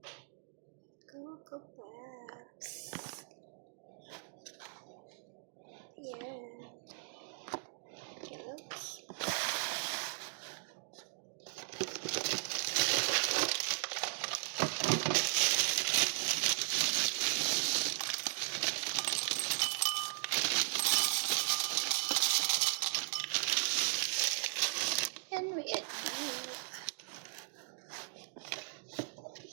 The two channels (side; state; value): left; silent; digital silence